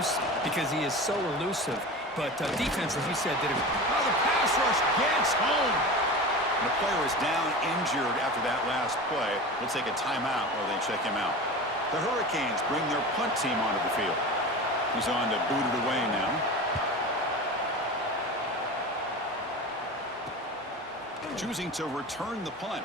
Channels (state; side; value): normal; both; correlation 0.31